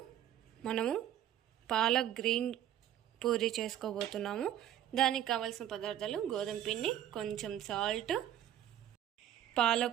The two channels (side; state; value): left; quieter; 11.3 dB